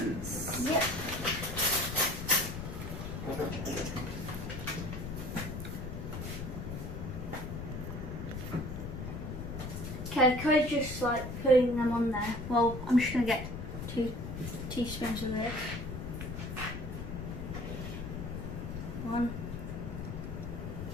Yep. Okay, Cody's just like putting them on there. Well, I'm just gonna get 2 teaspoons of this. 1,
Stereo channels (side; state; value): left; noise; rumble, 6 dB below the sound